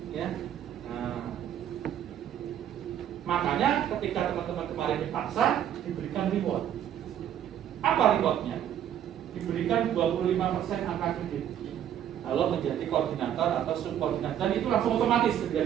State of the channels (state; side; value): quieter; left; 10.3 dB